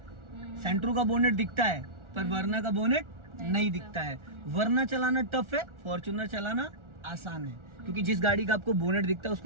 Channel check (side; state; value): left; late; 1.4 ms